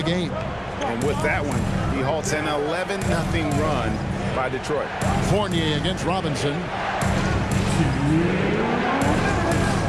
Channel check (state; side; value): identical; both; correlation 1.00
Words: game. And with that one, he halts an 11-0 run by Detroit. Fournier against Robinson.